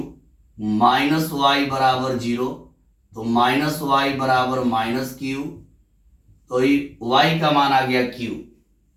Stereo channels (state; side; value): identical; both; correlation 1.00